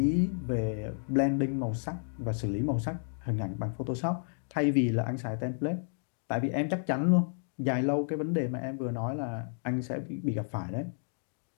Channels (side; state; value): right; silent; digital silence